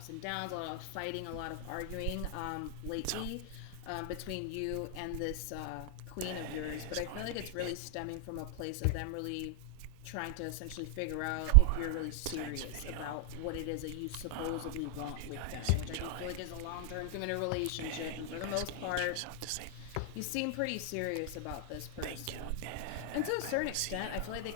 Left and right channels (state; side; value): different; both; correlation 0.00